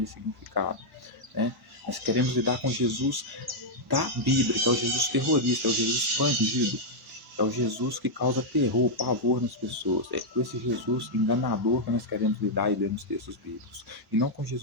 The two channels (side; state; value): both; normal; correlation -0.04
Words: ressignificada, né? Nós queremos lidar com Jesus da Bíblia, que é o Jesus terrorista, é o Jesus expandido, é o Jesus que causa terror, pavor nas pessoas. É com esse Jesus enganador que nós queremos lidar e ler nos textos bíblicos. E não com